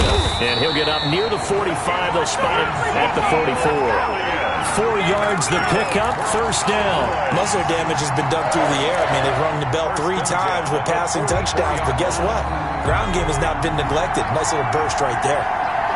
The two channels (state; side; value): identical; both; correlation 1.00